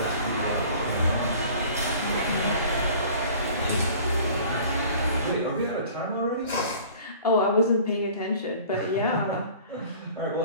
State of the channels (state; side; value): inverted; both; correlation -0.47